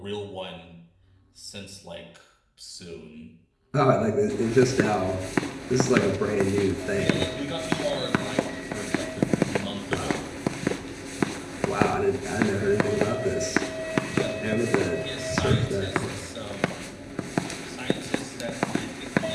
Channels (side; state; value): both; identical; correlation 1.00